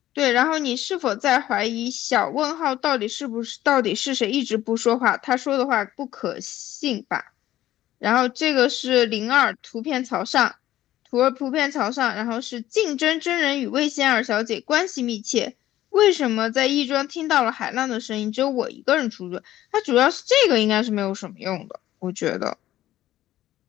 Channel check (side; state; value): right; quieter; 13.9 dB